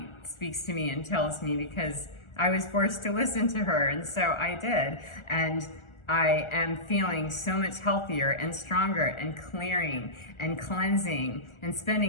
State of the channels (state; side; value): late; right; 1.4 ms